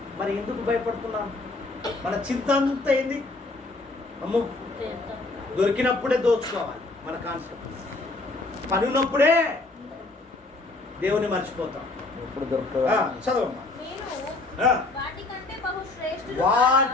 మరి ఎందుకు భయపడుతున్నాను? మన చింత అంతా ఏంది? అమ్మో, దొరికినప్పుడే దోచుకోవాలి. మన కాన్సెప్ట్. పని ఉన్నప్పుడే దేవుని మర్చిపోతాం. ఎప్పుడు దొరుకుతుందా? చదవమ్మా. మీరు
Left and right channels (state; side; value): quieter; right; 3.2 dB